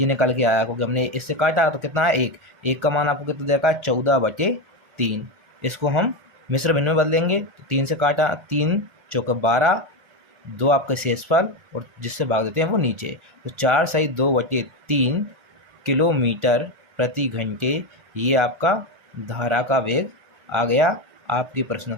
निकल के आया, क्योंकि हमने इससे काटा तो कितना है? 1। 1 का मान आपको कितना देखा है? 14/3। इसको हम मिश्र भिन्न में बदलेंगे तो 3 से काटा, 3 चौके 12, 2 आपके शेषफल, और जिससे भाग देते हैं वो नीचे। तो 4/2/3 किलोमीटर प्रति घंटे ये आपका धारा का वेग आ गया आपके प्रश्न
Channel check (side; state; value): left; late; 1.4 ms